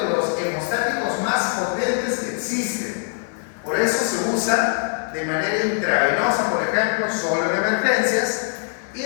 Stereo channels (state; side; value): silent; right; 64 dB below the other